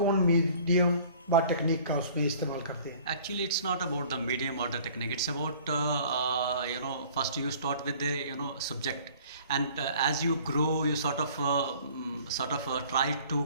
मीडियम व टेक्निक का उसमें इस्तेमाल करते हैं? Actually, it's not about the medium or the technique. It's about first you start with the subject, and as you grow, you sort of try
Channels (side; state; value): both; inverted; correlation -0.51